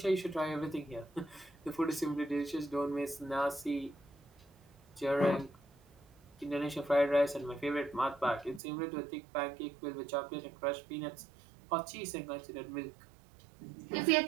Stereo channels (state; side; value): drops out; left; at 8.6 s